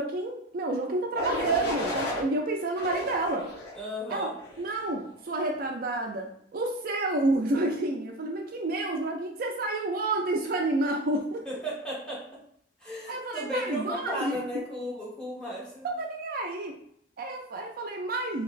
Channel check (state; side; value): normal; both; correlation 0.24